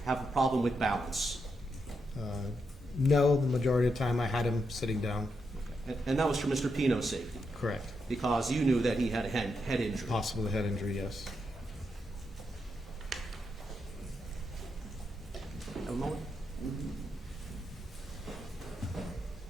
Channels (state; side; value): normal; both; correlation 0.83